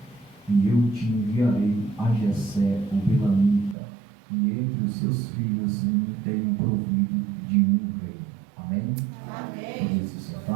e eu te enviarei a Jessé, o belamita, e entre os seus filhos me tenho provido de um rei. Amém? Amém. Podemos se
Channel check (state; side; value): drops out; left; at 3.8 s